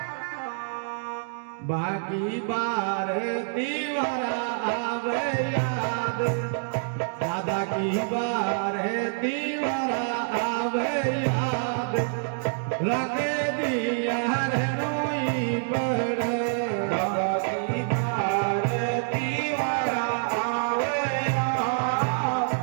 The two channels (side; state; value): left; silent; digital silence